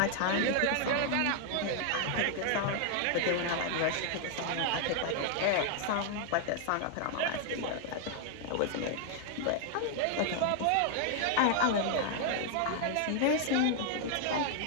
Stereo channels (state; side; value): different; both; correlation 0.00